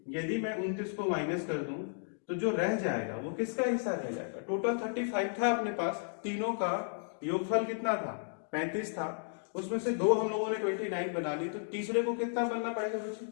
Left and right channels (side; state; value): right; silent; digital silence